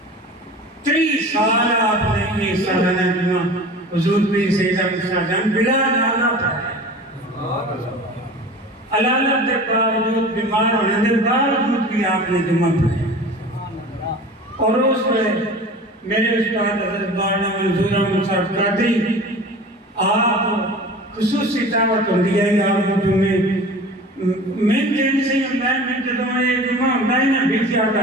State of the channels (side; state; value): both; normal; correlation 0.38